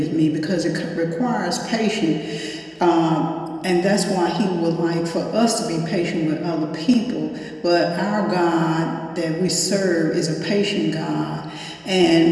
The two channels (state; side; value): identical; both; correlation 1.00